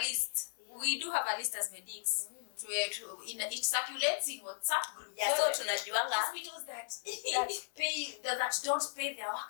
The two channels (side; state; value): right; silent; digital silence